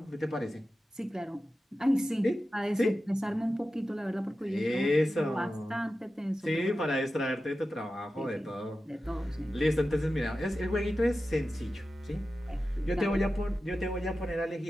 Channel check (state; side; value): normal; both; correlation 0.93